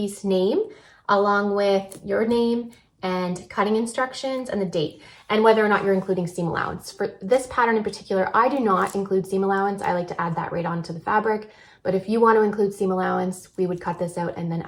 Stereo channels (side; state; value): both; identical; correlation 1.00